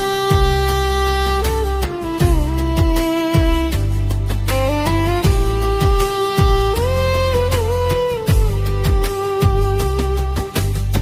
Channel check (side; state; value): both; identical; correlation 1.00